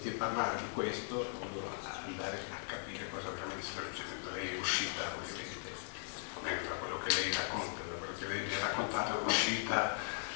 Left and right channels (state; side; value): silent; right; digital silence